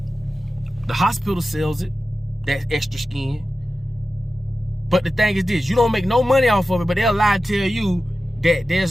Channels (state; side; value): normal; both; correlation 0.93